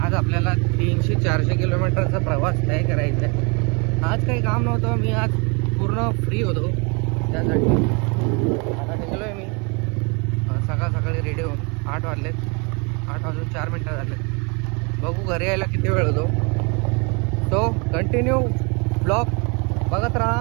आज आपल्याला 300-400 किलोमीटरचा प्रवास तय करायचा आहे. आज काही काम नव्हतं, मी आज पूर्ण फ्री होतो त्यासाठी. आता निघलो आहे मी सकाळी रेडी होऊन. 8 वाजलेत. 8 वाजून 4 मिनटं झाले. बघू घरी यायला किती वेळ होतो. तो कंटिन्यू ब्लॉग बघत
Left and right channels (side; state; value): left; quieter; 32.1 dB